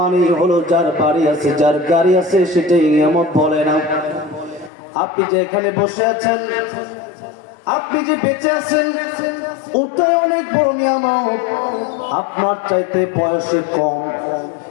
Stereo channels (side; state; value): right; drops out; at 4.7 s